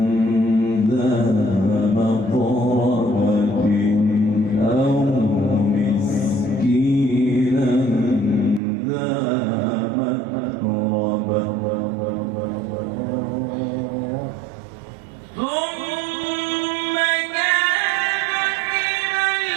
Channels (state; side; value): drops out; left; at 8.6 s